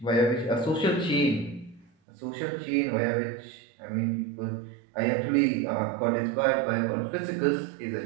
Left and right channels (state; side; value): drops out; left; at 1.9 s